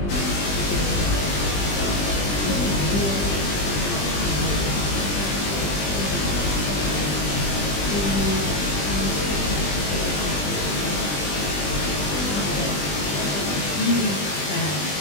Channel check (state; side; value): late; right; 20 ms